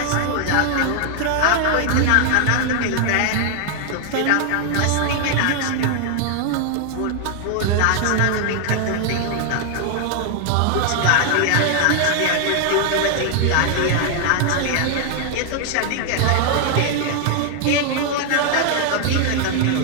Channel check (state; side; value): different; both; correlation 0.00